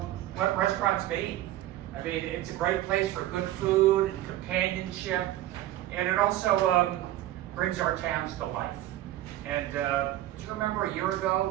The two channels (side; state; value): left; quieter; 14.3 dB